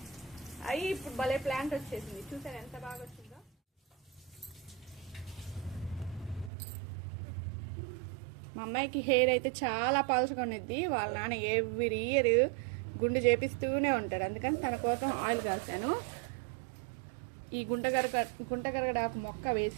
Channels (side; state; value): left; drops out; at 6.5 s